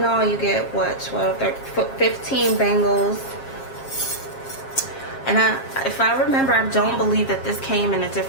all, you get what, 12, 13, 15 bangles. And if I remember, I don't believe that this came in a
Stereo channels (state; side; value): late; right; 7.4 ms